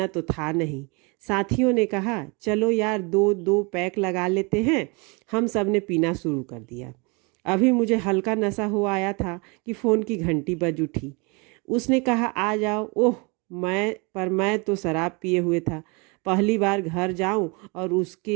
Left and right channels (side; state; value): left; quieter; 30.0 dB